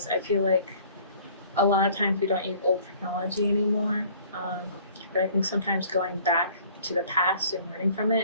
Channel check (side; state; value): both; inverted; correlation -0.53